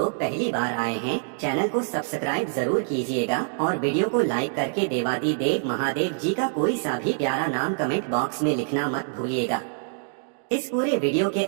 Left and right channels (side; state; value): left; silent; 61 dB below the other